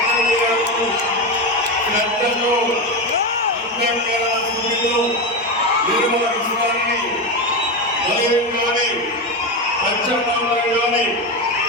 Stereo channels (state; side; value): normal; both; correlation 0.15